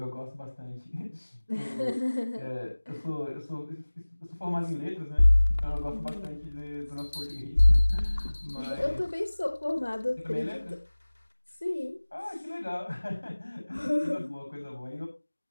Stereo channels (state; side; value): inverted; both; correlation -1.00